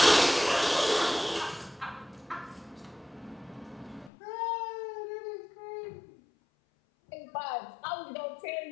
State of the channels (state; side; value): drops out; right; at 4.1 s